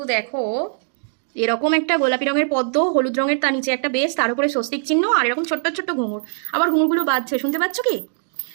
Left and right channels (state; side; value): silent; left; digital silence